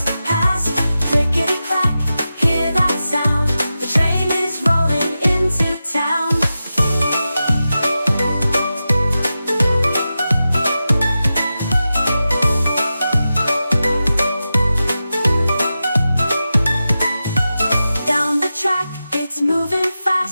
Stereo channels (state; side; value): inverted; both; correlation -0.92